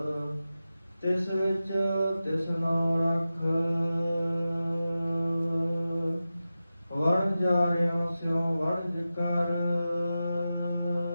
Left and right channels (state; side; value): inverted; both; correlation -0.93